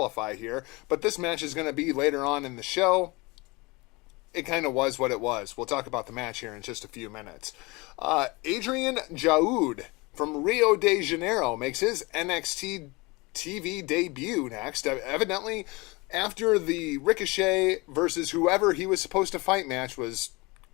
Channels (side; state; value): right; quieter; 25.0 dB